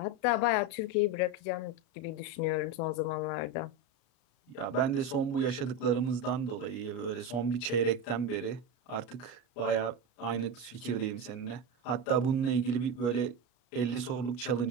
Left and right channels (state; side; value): late; right; 33 ms